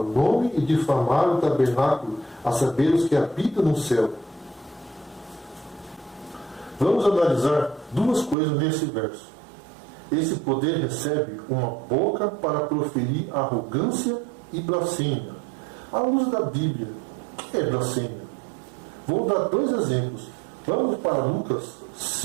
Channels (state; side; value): drops out; left; at 8.3 s